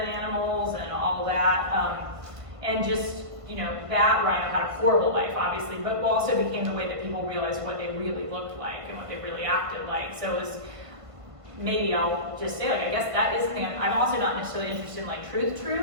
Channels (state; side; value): late; left; 1.5 ms